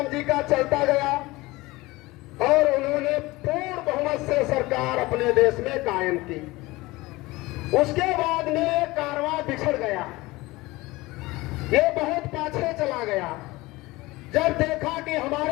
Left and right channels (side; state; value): right; quieter; 20.8 dB